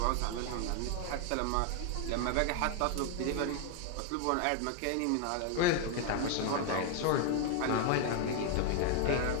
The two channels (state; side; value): different; both; correlation 0.00